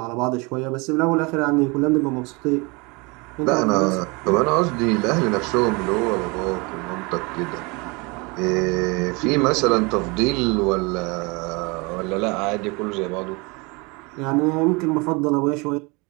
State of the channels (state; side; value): quieter; left; 27.9 dB